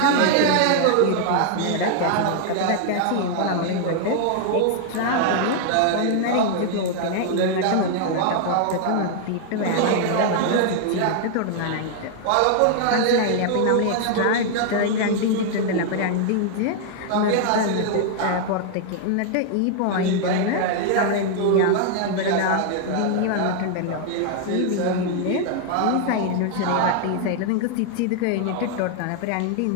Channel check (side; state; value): both; different; correlation 0.00